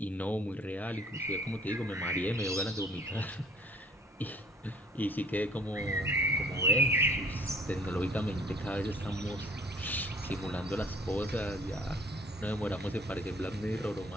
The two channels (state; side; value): normal; both; correlation 0.55